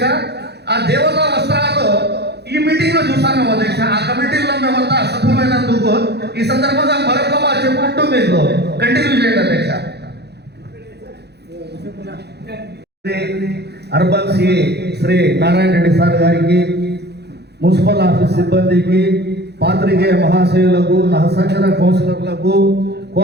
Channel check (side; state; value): left; late; 0.48 ms